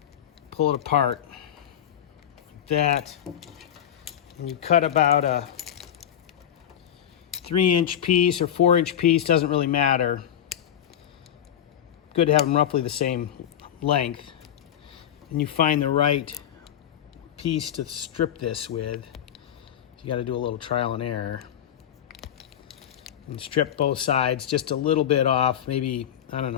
pull it apart like that, and you cut about a 3-inch piece or 4-inch piece, doesn't really matter. Good to have them roughly the same length. And you find the right piece to strip this with. You got to do a little trial and error. And strip both sides just a little bit off, maybe, I don't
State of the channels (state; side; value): quieter; right; 10.1 dB